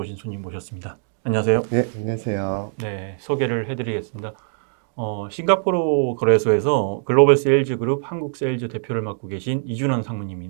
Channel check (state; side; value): silent; left; digital silence